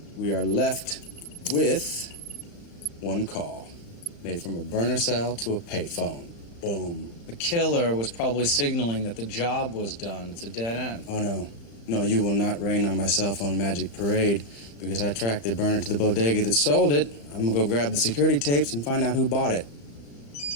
we are left with one call made from a burner cell to a payphone. Boom. The killer was probably signaling that the job was done. It's a dead end. Oh, no. No, you will not rain on my cell phone magic parade because I tracked the burner to the bodega that sold it. I'm gonna go grab the security tapes and find out who bought it.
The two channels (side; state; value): right; late; 35 ms